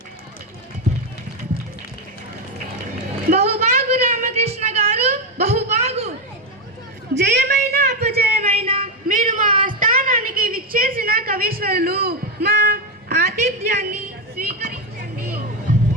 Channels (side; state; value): both; normal; correlation 0.09